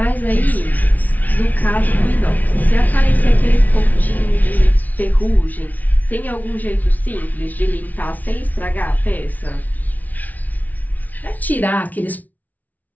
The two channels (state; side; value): late; right; 0.076 ms